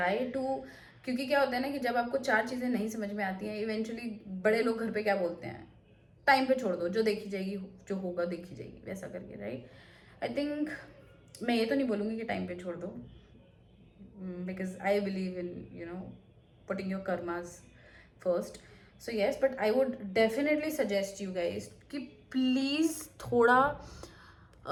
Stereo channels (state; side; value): identical; both; correlation 1.00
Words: to, क्योंकि क्या होता है ना कि जब आपको 4 चीज़ें नहीं समझ में आती हैं, इवेंचुअली बड़े लोग घर पे क्या बोलते हैं, टाइम पे छोड़ दो, जो देखी जाएगी, जो होगा देखी जाएगी, वैसा करके, राइट. आई थिंक मैं ये तो नहीं बोलूँगी कि टाइम पे छोड़ दो, because I believe in, you know, putting your karmas first. So yes, but I would definitely suggest you guys कि please थोड़ा